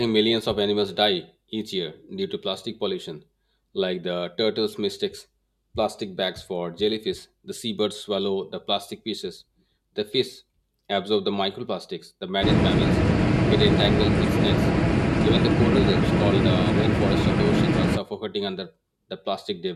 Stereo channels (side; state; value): both; identical; correlation 1.00